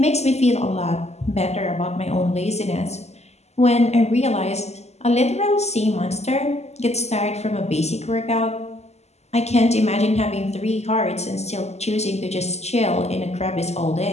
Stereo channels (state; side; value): late; right; 0.32 ms